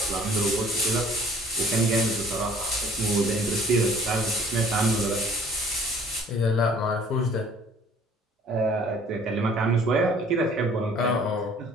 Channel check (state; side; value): normal; both; correlation 0.54